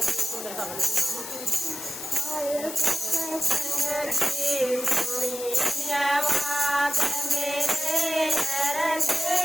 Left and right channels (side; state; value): left; noise; hiss, 9 dB below the sound